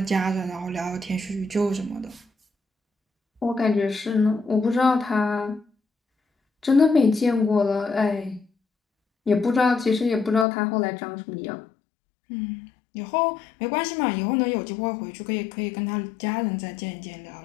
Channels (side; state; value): right; drops out; at 10.5 s